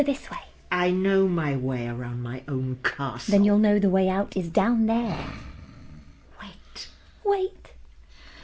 this way. I know my way around my own castle. Then you'll know the way out is down there. Wait.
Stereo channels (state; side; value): identical; both; correlation 1.00